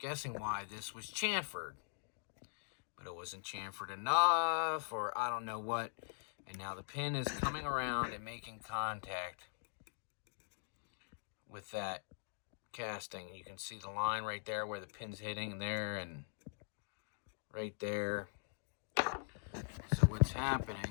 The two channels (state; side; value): silent; right; digital silence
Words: why this was chamfered. But it wasn't chamfered enough, or I don't know what. And now the pin is coming around and making contact with that casting. You can see the line right there where the pin's hitting there and right there. So what's